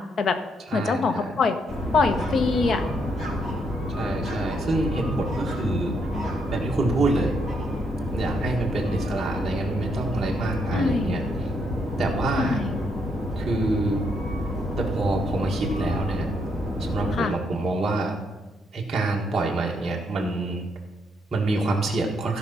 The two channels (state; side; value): normal; both; correlation 0.75